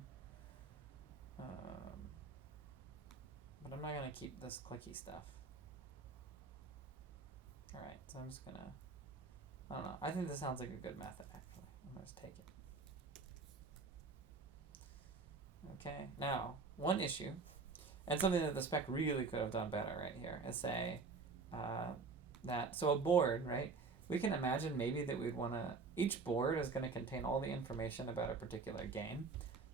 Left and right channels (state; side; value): quieter; left; 4.4 dB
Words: But I'm not gonna keep this clicky stuff. All right, so I'm just gonna, I don't know. I think this sounds like a good method, actually. I'm gonna just take it. Okay, now, one issue, and something that the spec really could have done better right here, is say that, so a board, right? We can imagine maybe that we'd wanna, each board is gonna contain all the information about a particular game.